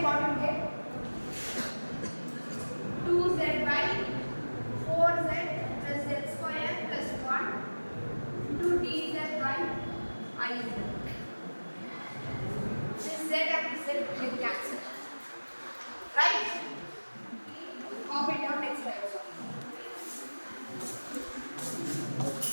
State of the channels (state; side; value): inverted; both; correlation -1.00